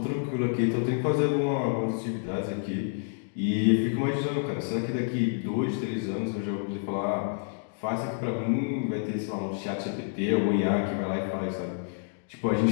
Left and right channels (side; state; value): right; silent; digital silence